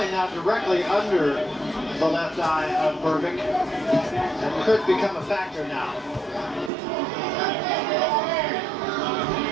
now directly under the left eye of Berbick, and could become a factor now.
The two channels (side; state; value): left; drops out; at 6.7 s